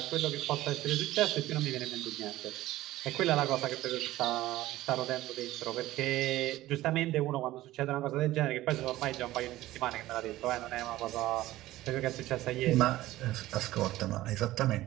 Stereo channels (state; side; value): quieter; left; 16.1 dB